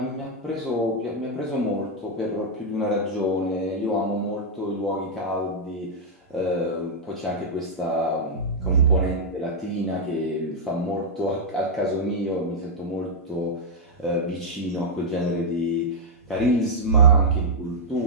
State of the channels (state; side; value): normal; both; correlation -0.03